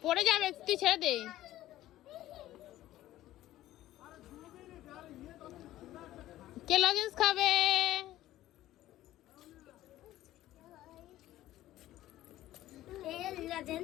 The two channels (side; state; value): right; quieter; 14.6 dB